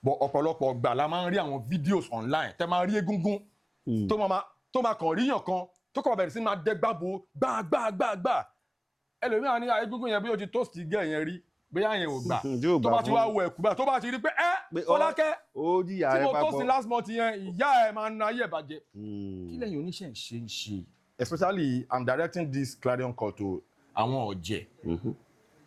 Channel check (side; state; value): both; identical; correlation 1.00